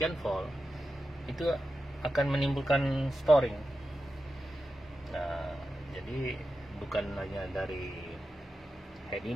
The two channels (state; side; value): normal; both; correlation 0.91